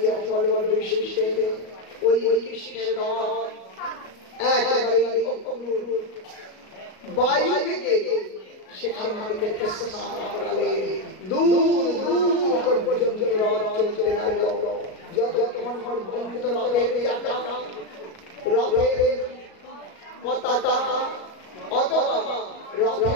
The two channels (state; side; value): late; right; 37 ms